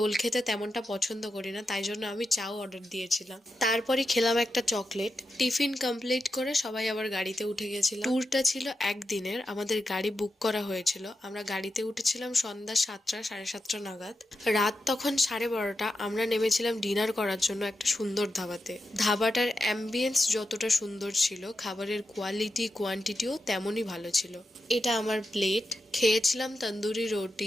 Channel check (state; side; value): normal; both; correlation 0.88